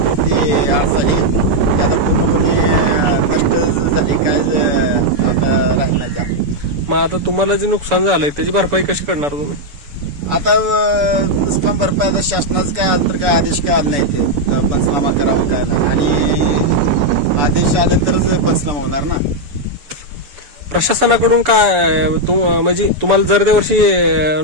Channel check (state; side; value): late; left; 7.0 ms